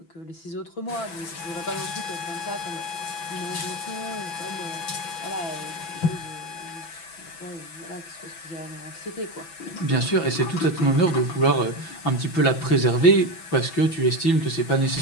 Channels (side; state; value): right; late; 6.0 ms